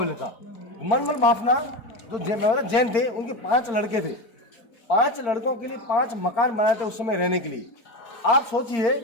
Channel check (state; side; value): late; right; 4.4 ms